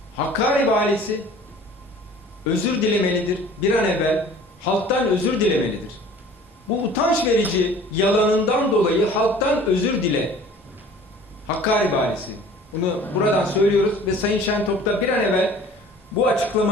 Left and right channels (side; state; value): both; normal; correlation 0.48